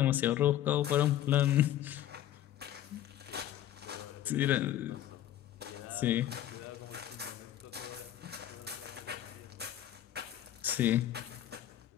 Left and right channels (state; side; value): quieter; right; 12.2 dB